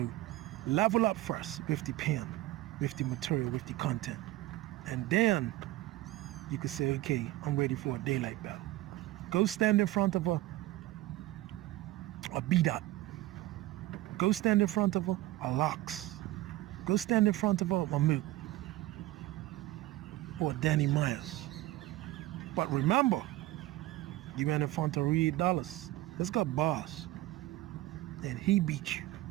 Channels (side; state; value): left; quieter; 16.4 dB